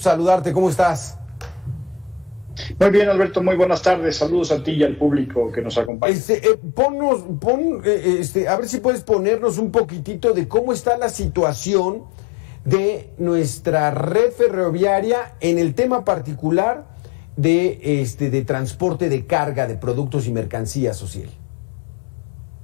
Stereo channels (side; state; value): right; drops out; at 5.9 s